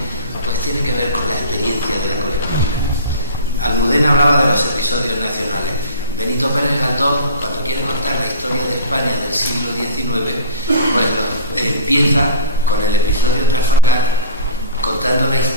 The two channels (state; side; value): inverted; both; correlation -0.38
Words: pues tiene que ver con la experiencia de la colectividad. Almudena hablaba de los episodios nacionales. Benito Pérez Galdós, cuando quiere contar la historia de España del siglo XIX, pues empieza con el episodio Trafalgar, contando la